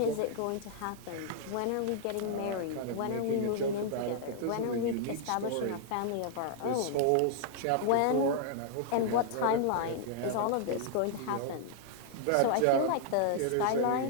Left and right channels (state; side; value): different; both; correlation -0.01